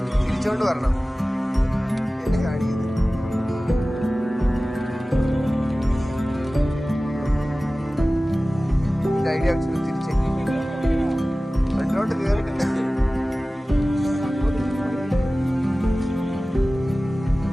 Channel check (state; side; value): normal; both; correlation 0.97